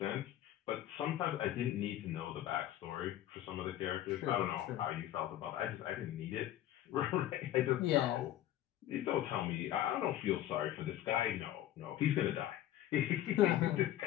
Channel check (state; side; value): quieter; right; 12.9 dB